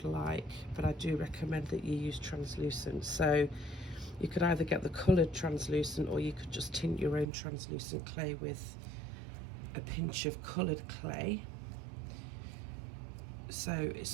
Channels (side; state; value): left; drops out; at 7.2 s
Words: like, but I do recommend that you use translucent. So you could either get the coloured translucent, or you could just tint your own translucent clay with a pinch of coloured clay. So